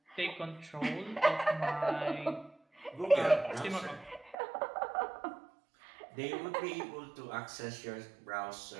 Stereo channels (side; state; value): left; drops out; at 4.4 s